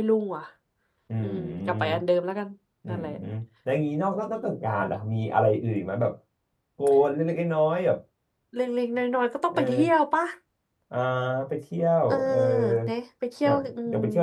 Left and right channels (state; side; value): identical; both; correlation 1.00